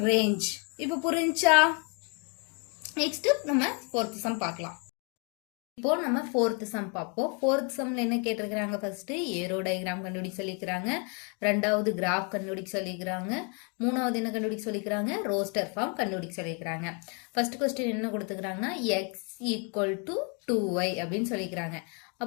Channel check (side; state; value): right; quieter; 36.1 dB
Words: ரேஞ்ச். இப்போ புரிஞ்சா? நெக்ஸ்ட் நம்ம 4th சம் பார்க்கலாம். இப்போ நம்ம 4th சம் பார்ப்போம். 4th சம்ல என்ன கேட்டிருக்கிறாங்க ஃபர்ஸ்ட் ஏரோ டயக்ராம் கண்டுபிடிக்க சொல்லிக்கிறாங்க. ரெண்டாவது கிராஃப் கண்டுபிடிக்க சொல்லிக்கிறாங்க. மூணாவது என்ன கண்டுபிடிக்க சொல்லிக்கிறாங்க ரோஸ்டர் ஃபார்ம் கண்டுபிடிக்க சொல்லிக்கிறாங்க. ஃபர்ஸ்ட் கொஸ்டின் என்ன கொடுத்துக்கிறாங்கன்னா x = 2y அப்படின்னு சொல்லிக்கிறாங்க.